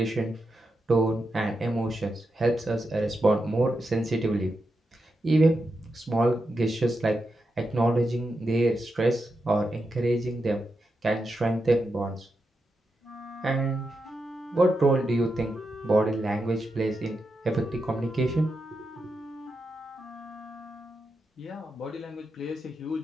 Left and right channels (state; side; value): normal; both; correlation 0.87